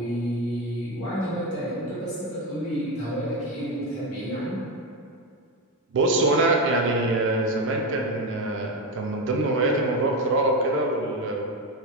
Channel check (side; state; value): both; normal; correlation 0.12